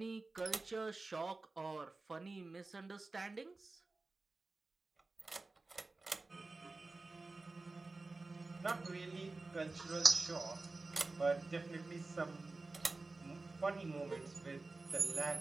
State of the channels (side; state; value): left; quieter; 3.4 dB